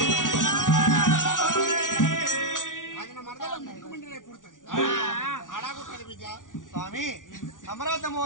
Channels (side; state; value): right; late; 0.88 ms